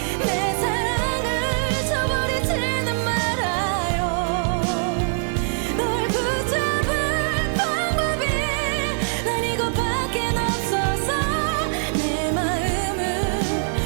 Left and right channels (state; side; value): silent; left; 58 dB below the other